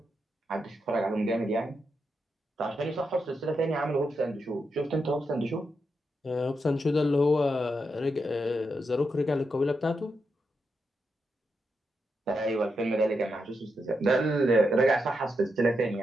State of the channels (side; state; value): both; normal; correlation 0.85